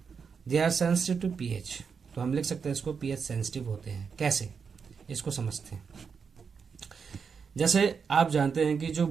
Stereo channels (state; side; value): quieter; left; 6.0 dB